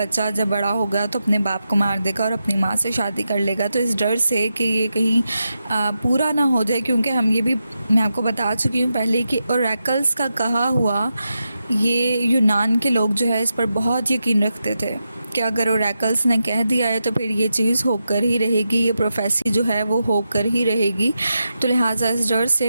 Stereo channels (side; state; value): both; inverted; correlation -0.88